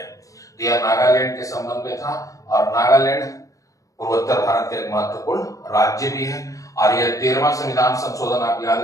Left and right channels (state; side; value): late; right; 0.16 ms